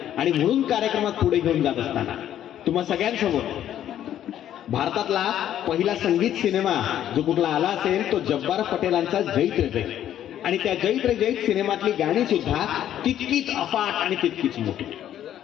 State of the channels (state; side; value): quieter; right; 11.2 dB